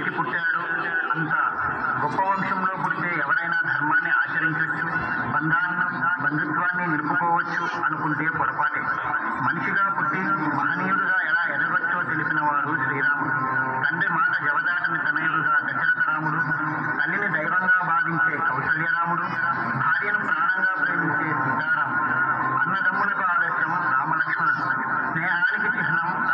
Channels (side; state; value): both; identical; correlation 1.00